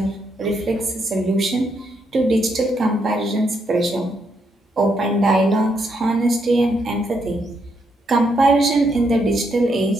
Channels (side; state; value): both; normal; correlation 0.77